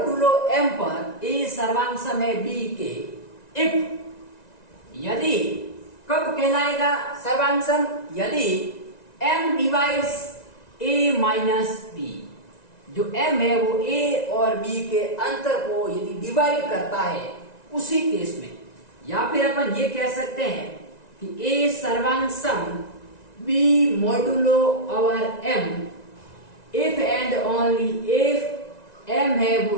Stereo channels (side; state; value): right; late; 1.9 ms